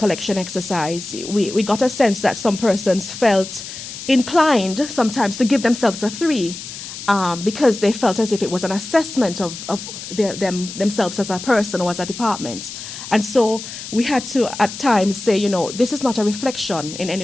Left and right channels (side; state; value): left; noise; hiss, 11 dB below the sound